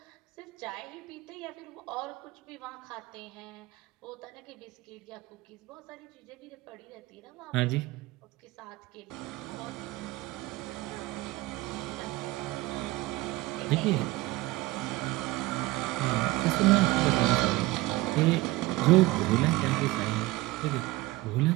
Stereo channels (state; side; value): quieter; left; 19.3 dB